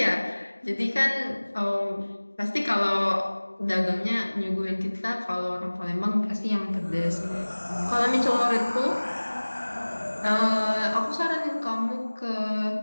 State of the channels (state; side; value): inverted; both; correlation -1.00